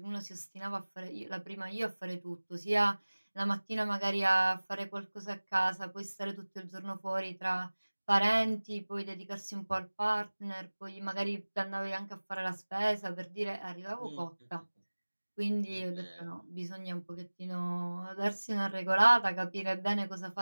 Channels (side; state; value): both; inverted; correlation -1.00